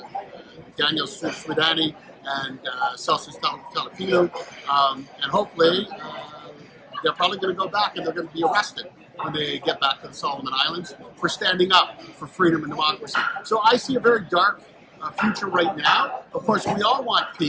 Daniel Swidani and Celsius Talafilu, and hopefully they're probably going to go back and they're going to be arrested when they get back to the Solomon Islands for standing up for freedom and democracy. So I see a very dark future right now. Of course, we all want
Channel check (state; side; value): identical; both; correlation 1.00